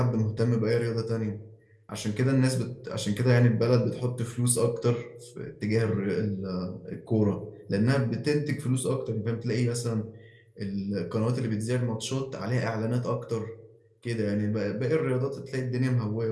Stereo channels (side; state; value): both; identical; correlation 1.00